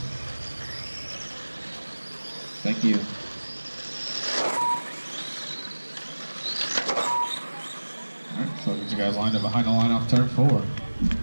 Thank you. Alright, so get you guys lined up behind the line off turn 4.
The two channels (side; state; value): both; inverted; correlation -1.00